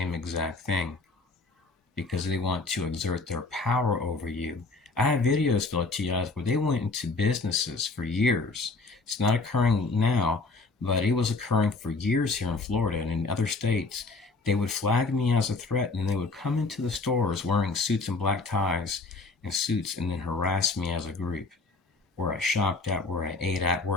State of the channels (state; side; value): quieter; right; 3.6 dB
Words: exact thing because they want to exert their power over you. I have videos, Philatia, where they went into businesses for years. It's not occurring now, but it was occurring for years here in Florida and in other states. They would flag me as a threat, and they would come into the stores wearing suits and black ties and suits and then harass me as a group. Where I shopped at, where I ate at,